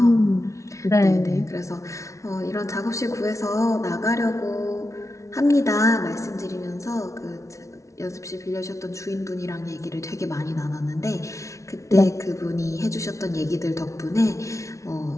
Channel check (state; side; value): late; right; 0.14 ms